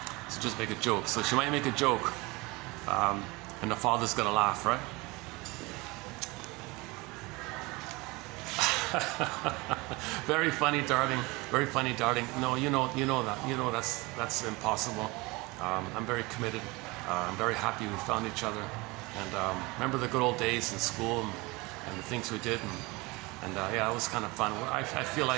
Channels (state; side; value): quieter; left; 24.0 dB